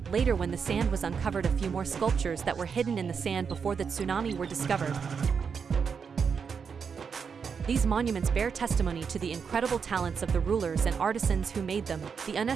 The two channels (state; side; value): quieter; left; 6.2 dB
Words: Later, when the sand was uncovered, a few more sculptures that were hidden in the sand before the tsunami were discovered. These monuments bear testimony to the incredible talents of the rulers and artisans who made them. The